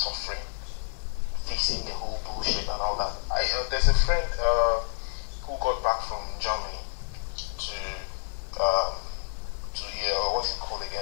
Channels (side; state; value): right; silent; 59 dB below the other